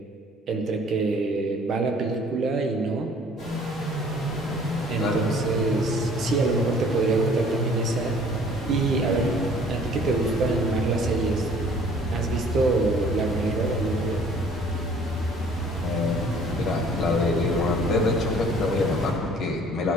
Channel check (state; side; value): normal; both; correlation 0.54